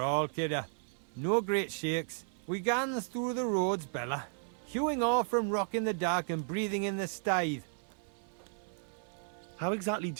all, kidder. No great shakes. We gans through the roads, Bella. Hewing off from rock in the dark and breathing in the stithe. How exactly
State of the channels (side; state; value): left; silent; 55 dB below the other